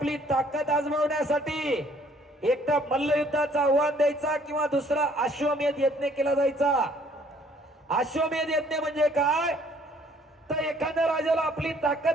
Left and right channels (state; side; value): normal; both; correlation 0.61